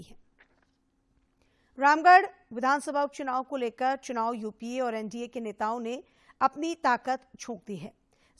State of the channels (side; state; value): both; identical; correlation 1.00